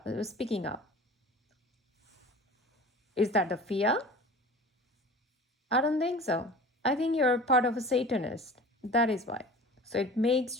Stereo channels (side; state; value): both; normal; correlation 0.40